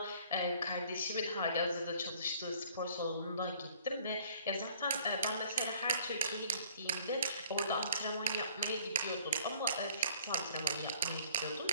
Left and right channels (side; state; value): both; inverted; correlation -0.55